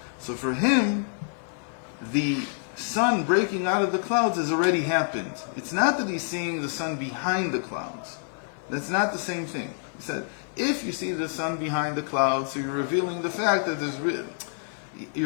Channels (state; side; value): silent; right; 60 dB below the other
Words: So for him, the sun breaking out of the clouds has already happened. It's not that he's seeing the sun behind the clouds. That's not the same thing. He said, if you see the sun behind the clouds, so you're revealing the fact that